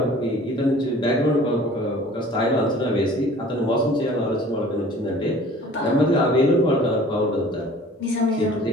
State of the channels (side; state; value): both; normal; correlation 0.48